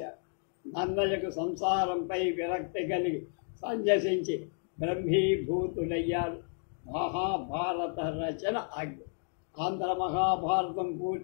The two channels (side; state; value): right; silent; 56 dB below the other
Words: నన్నయ్యకు సంసారంపై విరక్తి కలిగి సంజసించి బ్రహ్మీభూతుడయ్యారు. మహాభారత రచన ఆజ్ఞ. ఆంధ్ర మహాభారతం